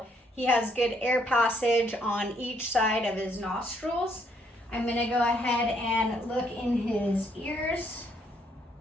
he has good air passage on each side of his nostrils. I'm going to go ahead and look in his ears.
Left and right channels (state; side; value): normal; both; correlation 0.70